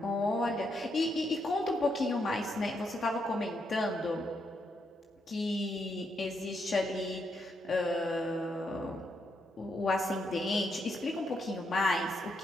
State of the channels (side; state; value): both; normal; correlation 0.79